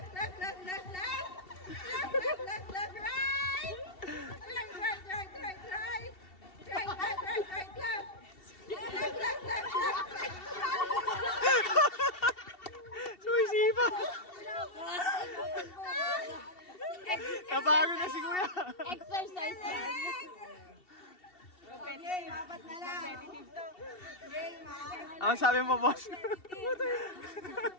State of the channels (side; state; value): right; late; 2.7 ms